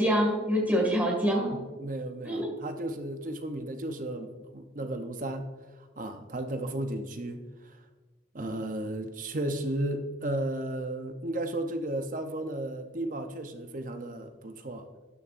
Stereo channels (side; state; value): both; normal; correlation 0.56